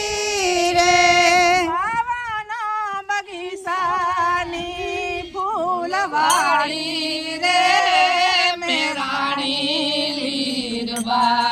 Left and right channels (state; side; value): identical; both; correlation 1.00